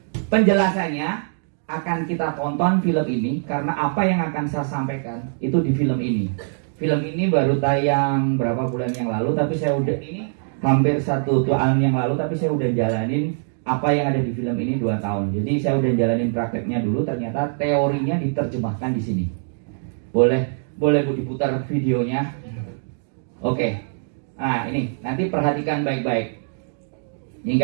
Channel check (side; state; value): left; silent; digital silence